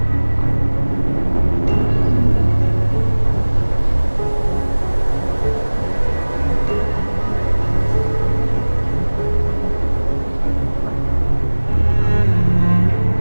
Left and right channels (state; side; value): inverted; both; correlation -1.00